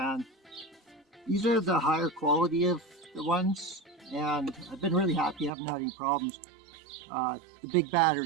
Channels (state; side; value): drops out; left; at 5.5 s